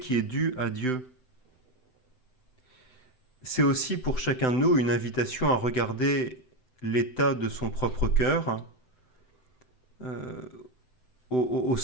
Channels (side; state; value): right; late; 7.9 ms